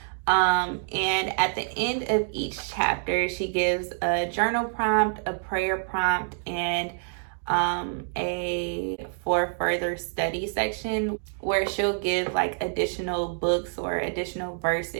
And at the end of each chapter, she gives a journal prompt, a prayer prompt, and a for further study section where she'll give like additional books or additional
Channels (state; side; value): silent; left; digital silence